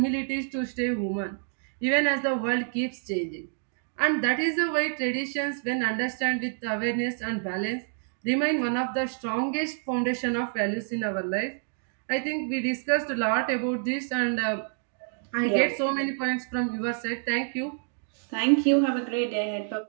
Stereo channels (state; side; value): silent; left; digital silence